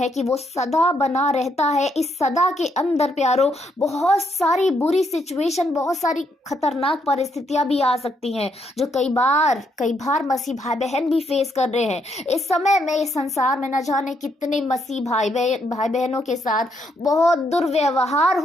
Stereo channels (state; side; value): normal; both; correlation 0.75